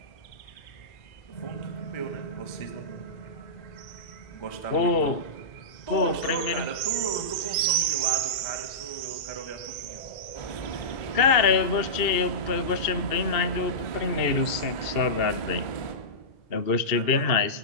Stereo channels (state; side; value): late; right; 2.7 ms